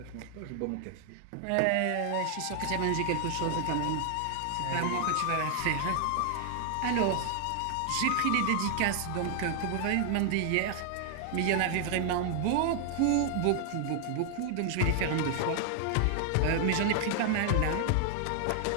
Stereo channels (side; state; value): both; different; correlation 0.00